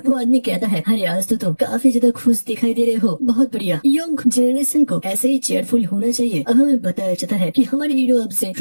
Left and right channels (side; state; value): both; inverted; correlation -1.00